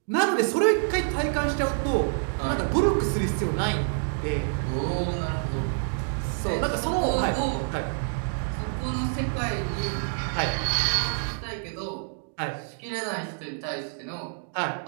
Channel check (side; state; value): left; silent; digital silence